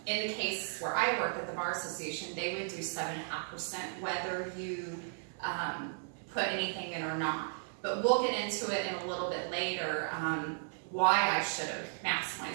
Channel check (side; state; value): left; silent; digital silence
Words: in the case where I worked at the Bar Association, they would do 7.5% whether you put anything in or not. But we'll get into it in a little bit later, why I should have